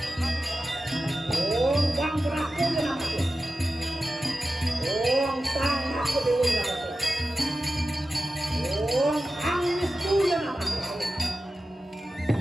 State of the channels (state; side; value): normal; both; correlation 0.94